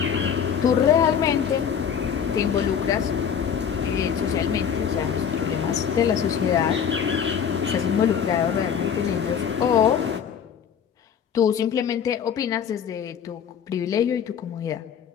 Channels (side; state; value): right; quieter; 7.8 dB